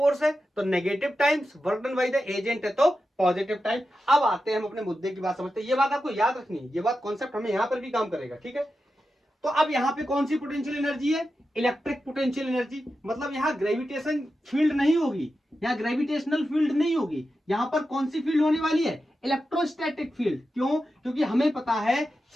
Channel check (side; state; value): both; normal; correlation 0.90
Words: है तो negative times, work done by the agent है तो पॉजिटिव टाइम। अब आते हैं हम अपने मुद्दे की बात समझते हैं, ये बात आपको याद रखनी है, ये बात कॉन्सेप्ट हमें यहां पर भी काम करेगा। ठीक है, तो अब यहां पे कौन सी पोटेंशियल एनर्जी है, इलेक्ट्रिक पोटेंशियल एनर्जी, मतलब यहां ग्रेविटेशन फील्ड नहीं होगी, यहां ग्रेविटेशनल फील्ड नहीं होगी, यहां पर कौन सी फील्ड होने वाली है, इलेक्ट्रोस्टैटिक फील्ड। क्यों? क्योंकि हमें पता है